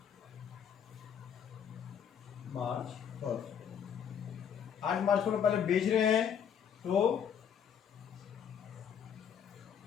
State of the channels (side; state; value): right; quieter; 8.1 dB